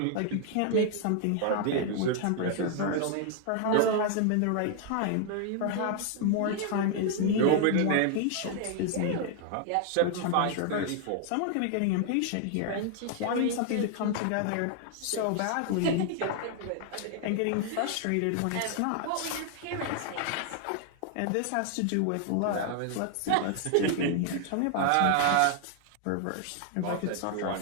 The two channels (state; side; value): different; both; correlation 0.00